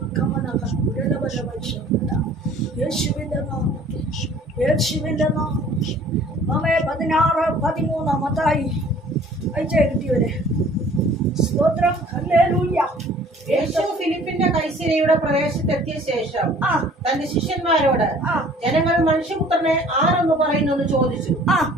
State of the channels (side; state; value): both; normal; correlation 0.52